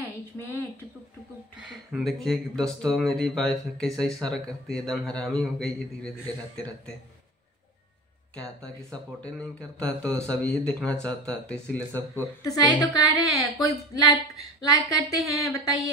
इसमें। टुकुक टुकुक टुकुक। देखिए दोस्तों, मेरी वाइफ कैसा इशारा करती है, एकदम हरामी हो गई है धीरे धीरे रहते रहते। कहता कि सपोर्ट नहीं करता तो सब यही देखना चाहता है, तो इसीलिए सबको तो सही तो कह रहे हैं। कोई लाइक करते हैं,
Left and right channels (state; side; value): normal; both; correlation 0.34